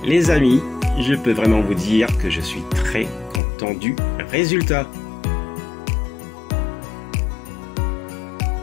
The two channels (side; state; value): right; drops out; at 3.4 s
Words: Les amis, je peux vraiment vous dire que je suis très content du résultat.